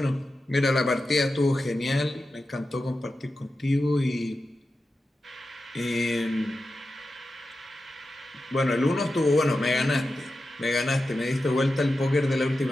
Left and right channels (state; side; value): normal; both; correlation 0.92